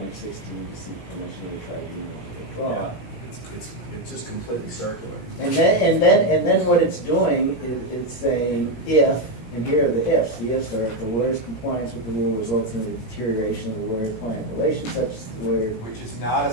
to seek permission of the tribunal to withdraw. Yeah, it's just completely circular. And then what it's doing is it's saying if, and here are the ifs. The ifs are if the lawyer's compliance with the rule results in the deterioration of the lawyer-client relations, such as the lawyer. Which is not a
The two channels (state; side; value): late; right; 17 ms